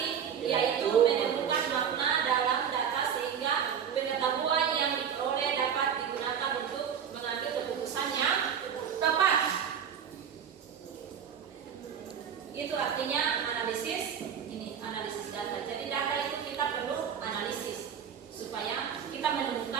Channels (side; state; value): left; quieter; 7.9 dB